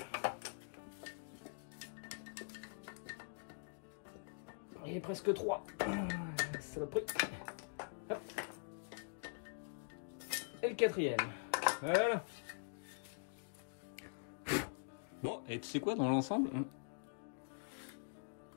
Il est presque 3. Saloperie. Hop. Et le 4e. Voilà. Bon, et tu sais quoi, dans l'ensemble hein,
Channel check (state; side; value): silent; right; digital silence